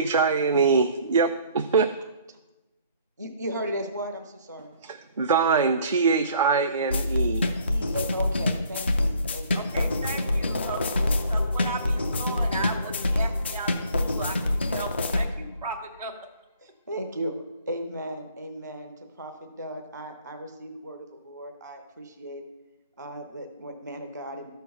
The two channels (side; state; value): both; inverted; correlation -0.58